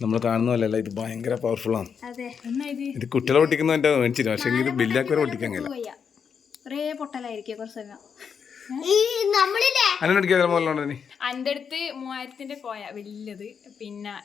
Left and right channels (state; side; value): quieter; right; 6.7 dB